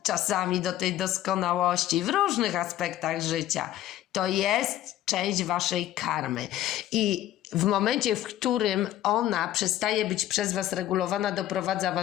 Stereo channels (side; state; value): right; quieter; 13.2 dB